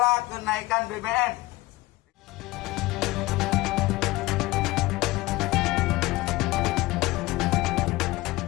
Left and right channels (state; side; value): quieter; right; 19.6 dB